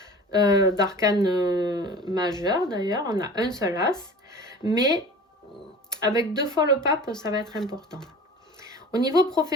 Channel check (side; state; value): both; normal; correlation 0.39